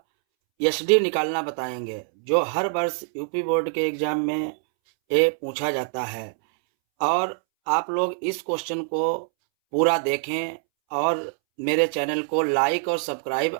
एसडी निकालना बताएंगे, जो हर वर्ष यूपी बोर्ड के एग्ज़ाम में ये पूछा जाता है। और आप लोग इस क्वेश्चन को पूरा देखें और मेरे चैनल को लाइक और सब्सक्राइब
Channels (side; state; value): left; silent; 62 dB below the other